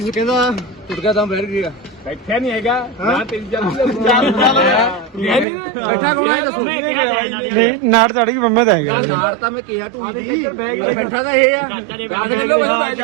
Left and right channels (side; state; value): left; drops out; at 5.5 s